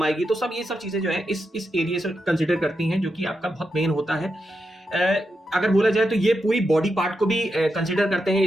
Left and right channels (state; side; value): normal; both; correlation 0.86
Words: आएगी, तो सब ये सब चीजें जो है इस एरिया से कंसिडर करती हैं, जो कि आपका बहुत मेन होता है। अगर बोला जाए तो ये पूरी बॉडी पार्ट को भी कंसिडर करते हैं